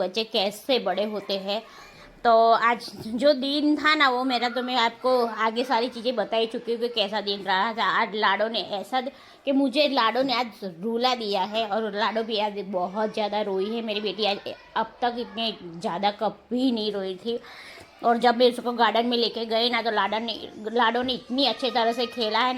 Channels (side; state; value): both; identical; correlation 1.00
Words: कैसे बड़े होते हैं। तो आज जो दिन था ना वो मेरा, तो मैं आपको आगे सारी चीज़ें बता ही चुकी हूँ कि कैसा दिन रहा था। आज लाडो ने ऐसा कि मुझे लाडो ने आज रुला दिया है, और लाडो भी आज बहुत ज़्यादा रोई है। मेरी बेटी आज अब तक इतने ज़्यादा कभी नहीं रोई थी। और जब मैं उसको गार्डन में लेके गए ना, तो लाडो ने इतनी अच्छे तरह से खेला है